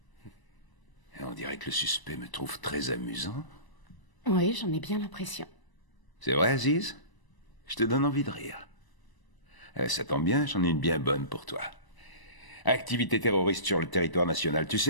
Et on dirait que le suspect me trouve très amusant. Oui, j'en ai bien l'impression. C'est vrai, Aziz? Je te donne envie de rire. Ça tombe bien, j'en ai une bien bonne pour toi. Activité terroriste sur le territoire national, tu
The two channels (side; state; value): right; late; 1.0 ms